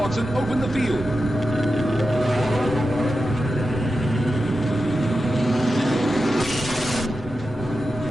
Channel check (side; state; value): both; normal; correlation 0.91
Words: and open the field.